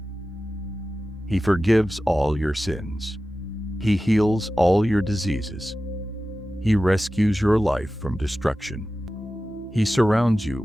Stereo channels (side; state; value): both; normal; correlation 0.94